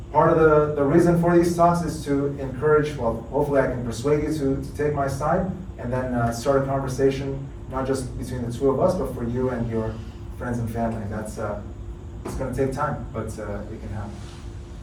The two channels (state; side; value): identical; both; correlation 1.00